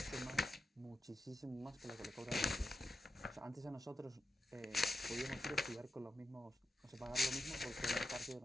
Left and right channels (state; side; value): normal; both; correlation 0.87